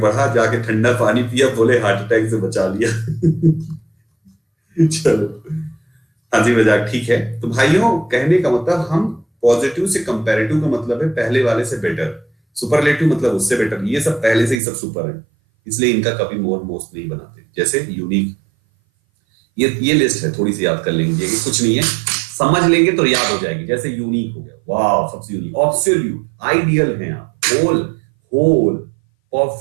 जाके ठंडा पानी पिया, बोले हार्ट अटैक से बचा लिया। चलो हंसी मजाक ठीक है। तो भाइयों कहने का मतलब हम पॉजिटिव से कंपैरेटिव का मतलब है पहले वाले से बेटर, सुपरलेटिव मतलब उससे बेटर। ये सब पहले से ही सब सुपर है, इसलिए इनका कभी मोर मोस्ट नहीं बनाते। जैसे यूनिक, ये लिस्ट है, थोड़ी सी याद कर लेंगे, कुछ नहीं है, समझ लेंगे तो याद हो जाएगी। जैसे यूनिक हो गया, वाह सबसे यूनिक, ऑब्सोल्यूट, आइडियल हैं आप, whole, whole,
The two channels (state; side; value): drops out; left; at 14.6 s